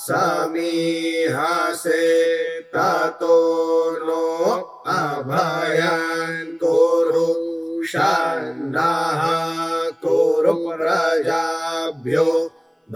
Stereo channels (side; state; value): both; identical; correlation 1.00